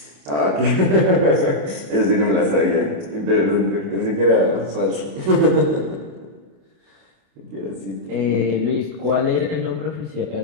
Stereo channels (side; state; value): left; late; 28 ms